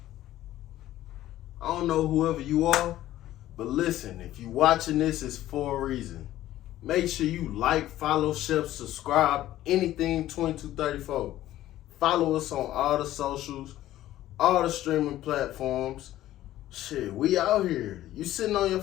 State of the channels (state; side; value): quieter; right; 14.1 dB